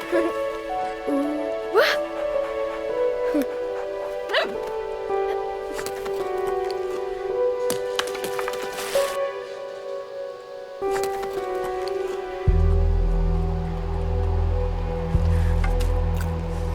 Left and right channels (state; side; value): identical; both; correlation 1.00